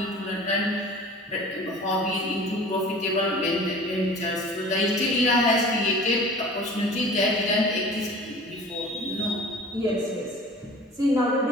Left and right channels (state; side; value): normal; both; correlation 0.42